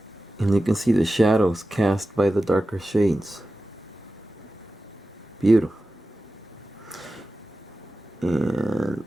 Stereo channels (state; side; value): normal; both; correlation 0.94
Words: And you can see the shadows cast by the darker shades. Beautiful. And